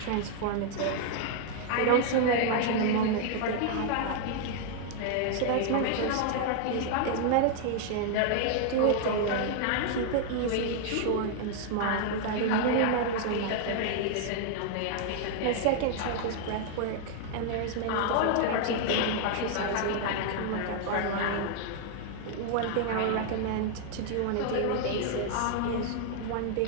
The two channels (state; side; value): different; both; correlation 0.00